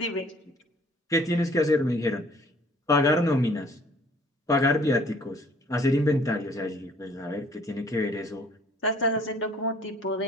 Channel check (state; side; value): normal; both; correlation 0.56